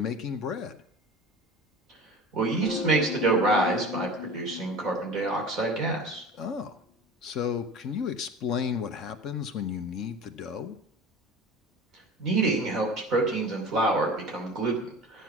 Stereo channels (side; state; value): both; normal; correlation 0.37